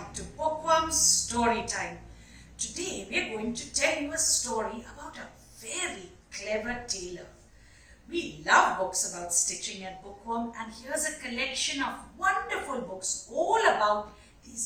to Bookworm's Story Time. Today we are going to tell you a story about a very clever tailor. We love books about stitching at Bookworm, and here's a collection of wonderful books all about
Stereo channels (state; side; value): identical; both; correlation 1.00